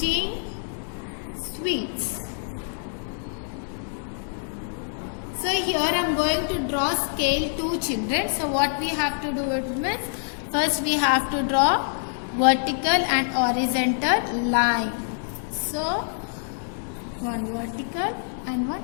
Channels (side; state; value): right; silent; digital silence